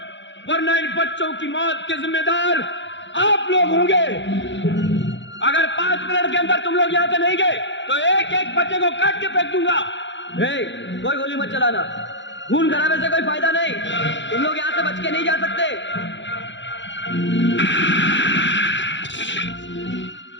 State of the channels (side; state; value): right; late; 0.54 ms